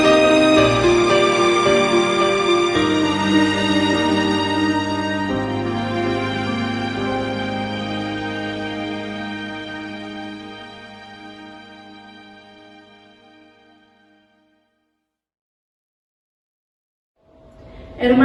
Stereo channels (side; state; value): both; identical; correlation 1.00